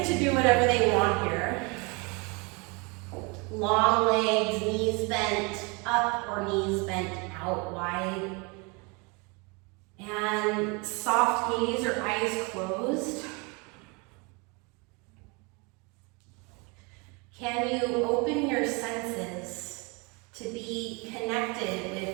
to do whatever they want here. Long legs, knees bent up or knees bent out wide. And soft gaze or eyes closed. Can you open your senses to be connected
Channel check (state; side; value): quieter; left; 30.0 dB